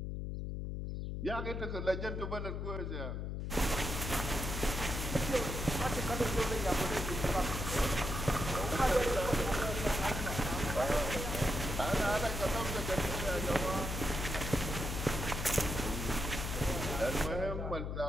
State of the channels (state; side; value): noise; left; hum, 3 dB below the sound